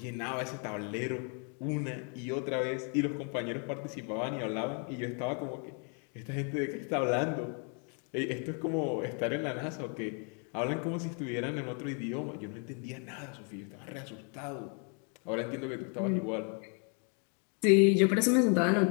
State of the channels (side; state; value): right; quieter; 39.6 dB